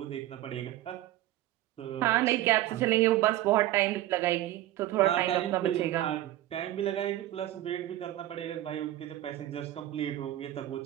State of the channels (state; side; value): quieter; left; 14.6 dB